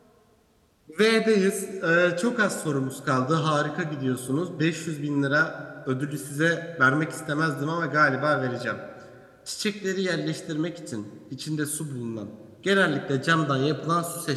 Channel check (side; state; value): both; identical; correlation 1.00